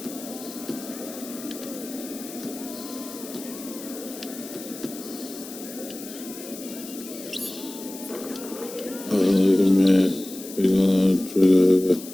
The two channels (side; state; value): left; noise; hiss, 13 dB below the sound